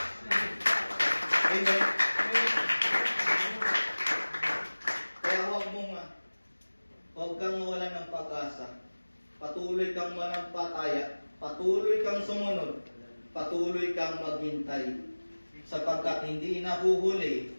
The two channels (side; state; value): both; inverted; correlation -1.00